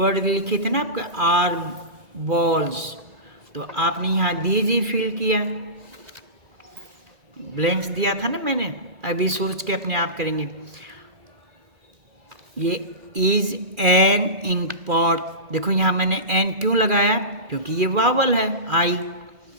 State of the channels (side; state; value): left; late; 2.4 ms